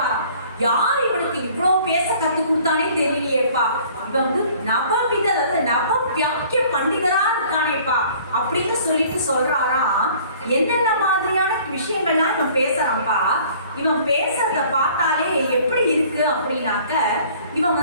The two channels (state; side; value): inverted; both; correlation -0.53